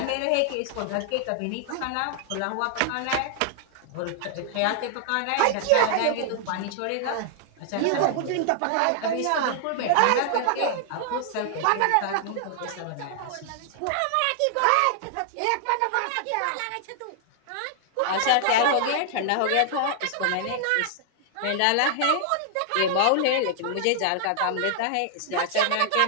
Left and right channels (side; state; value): both; different; correlation -0.01